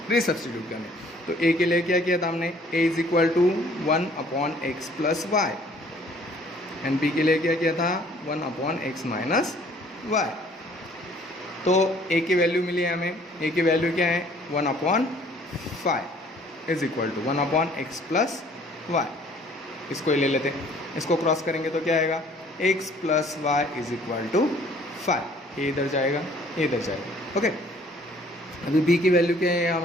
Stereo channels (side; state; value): both; normal; correlation 0.57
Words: रीसब्स्टिट्यूट करने। तो a के लिए क्या किया था हमने, a is equal to 1/x plus Y, and b के लिए क्या किया था 1/x माइनस वाई। तो a की वैल्यू मिली है हमें, a की वैल्यू क्या है 1/5 is equal to 1/x plus Y. इसको ही ले लेते हैं, इसको क्रॉस करेंगे तो क्या आएगा x plus Y is equal to 5, ये इधर जाएगा, ये इधर जाएगा। ओके, अभी b की वैल्यू क्या है